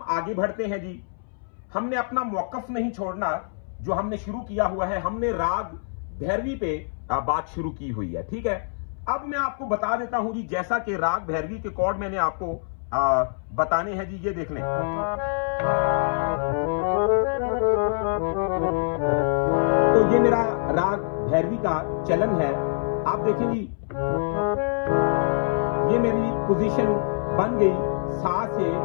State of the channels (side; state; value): right; silent; 62 dB below the other